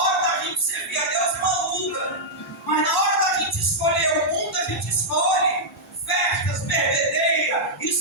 da gente servir a Deus é uma luta. Mas na hora da gente escolher o mundo, a gente escolhe festas, bebedeira.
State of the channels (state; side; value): normal; both; correlation -0.07